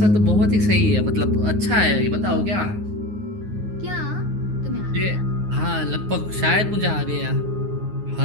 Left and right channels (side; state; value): left; late; 9.5 ms